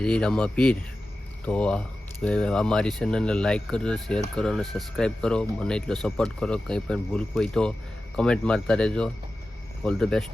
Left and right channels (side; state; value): both; normal; correlation 0.94